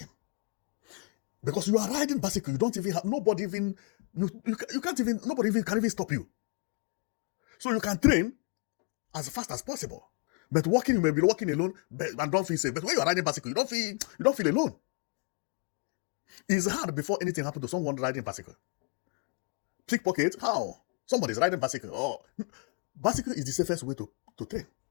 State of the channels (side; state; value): right; quieter; 32.8 dB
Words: Because you are riding bicycle, you don't even have, nobody even can even stop you. So you can train as fast as possible. But walking, you may be walking alone and don't feel safe. But when you are riding bicycle, you don't feel alone. It's hard before anything happens to someone riding bicycle. Pickpocket, how? Somebody is riding bicycle. Oh, bicycle is the safest way to train.